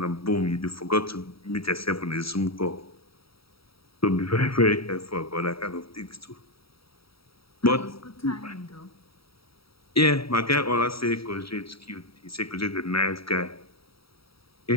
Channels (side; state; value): right; late; 0.75 ms